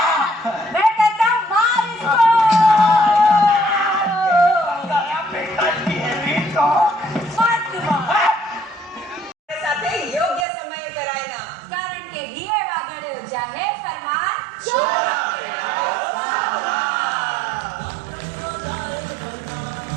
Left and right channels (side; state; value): left; drops out; at 10.5 s